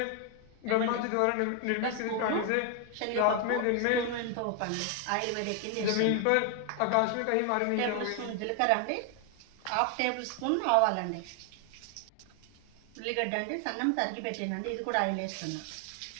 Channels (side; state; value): both; different; correlation 0.00